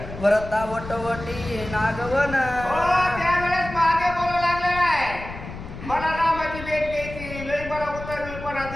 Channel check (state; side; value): noise; left; rumble, 11 dB below the sound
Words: व्रता वटवटी नागवन. त्यावेळेस मागे बोलू लागलेला आहे, मला रामाची भेट घ्यायची, लय मला उतरपणा